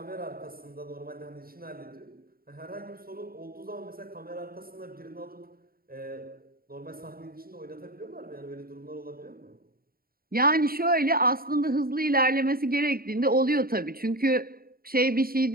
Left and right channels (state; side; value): late; left; 0.43 ms